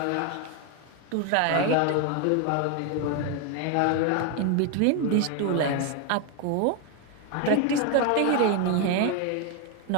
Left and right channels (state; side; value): different; both; correlation 0.01